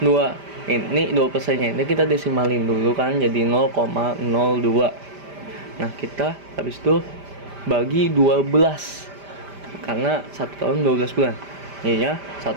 2%-nya ini kita desimalin dulu kan jadi 0,02. Nah, kita habis itu bagi 12 karena 1 tahun 12 bulan. Jadinya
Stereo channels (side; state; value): left; late; 5.0 ms